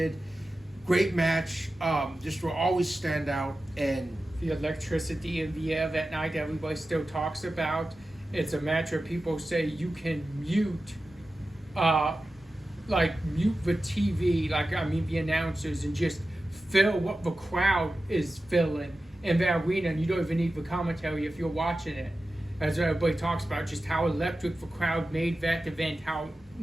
Great match, just will always stand out. And the electricity in the air that night everybody still talks about. It's a match where people say you can mute the TV, the announcers, and just feel what the crowd is feeling in the arena, and you don't even need the commentary if you're watching it. As everybody talks about, just how electric the crowd made that event, how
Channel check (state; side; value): normal; both; correlation 0.94